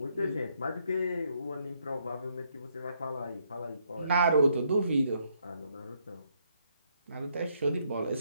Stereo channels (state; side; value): inverted; both; correlation -0.72